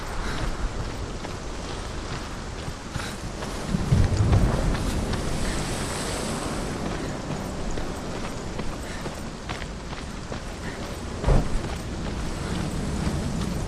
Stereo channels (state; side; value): identical; both; correlation 1.00